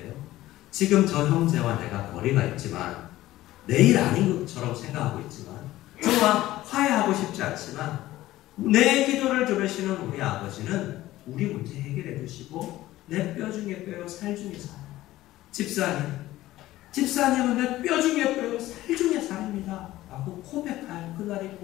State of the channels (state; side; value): quieter; right; 15.8 dB